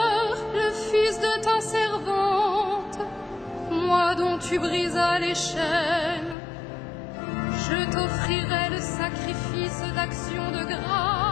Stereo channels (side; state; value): right; drops out; at 6.4 s